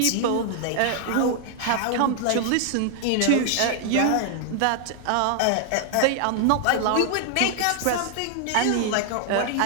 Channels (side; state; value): both; different; correlation 0.00